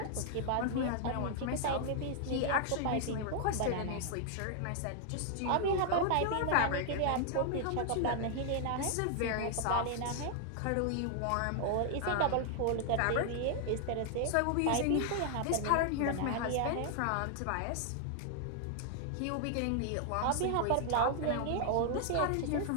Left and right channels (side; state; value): both; different; correlation 0.00